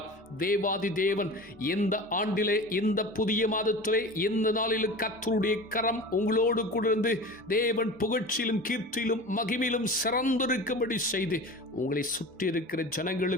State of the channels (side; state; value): both; normal; correlation 0.35